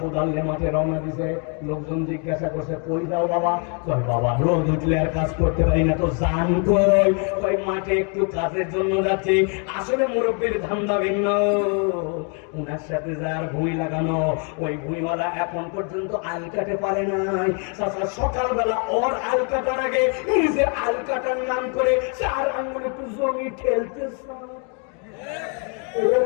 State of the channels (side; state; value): right; quieter; 38.8 dB